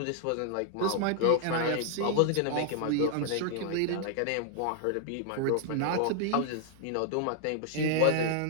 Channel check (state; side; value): different; both; correlation 0.00